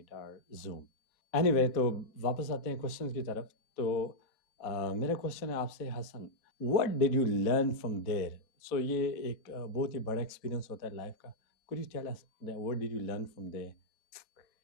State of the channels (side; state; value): right; late; 4.0 ms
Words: or Zoom. Anyway, तो वापस आते हैं questions की तरफ। तो मेरा question है आपसे Hasan, what did you learn from there? So ये एक बहुत ही बड़ा एक्सपीरियंस होता है लाइफ का। Could you tell us that what did you learn from there?